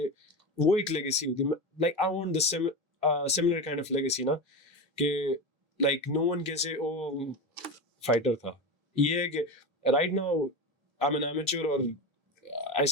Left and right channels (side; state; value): both; normal; correlation 0.21